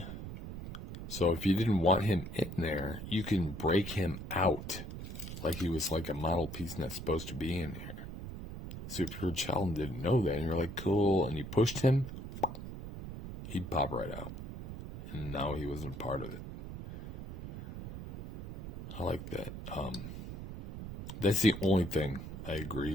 So if you didn't want him in there, you can break him out. Like he was like a model piece not supposed to be in here. So if your child didn't know that, and you're like, cool, and you pushed him, he'd pop right out. And now he wasn't part of it. I like that. That's the only thing I agree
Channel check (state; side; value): noise; right; rumble, 9 dB below the sound